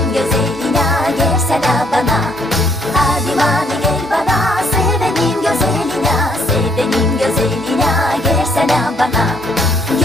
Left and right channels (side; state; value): both; normal; correlation 0.68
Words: güzeline gelsene bana. Hadi mani gel bana sevenin güzeline. Sevenin güzeline gelsene bana.